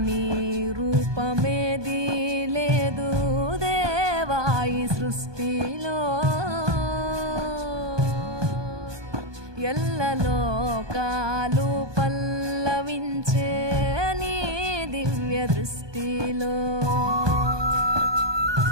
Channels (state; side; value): late; left; 1.2 ms